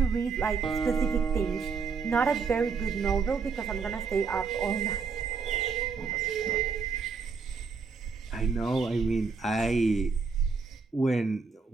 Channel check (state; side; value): quieter; left; 5.2 dB